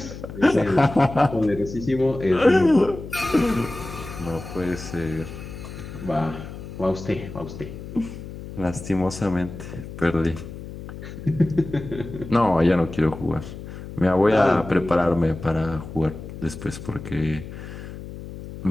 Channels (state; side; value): noise; left; hum, 11 dB below the sound